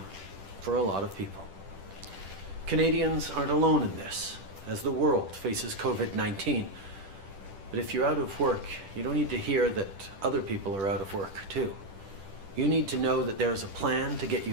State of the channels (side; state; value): left; late; 10 ms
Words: for a lot of people. Canadians aren't alone in this, as the world faces COVID-19. But if you're out of work, you don't need to hear that other people are out of work too. You need to know that there's a plan to get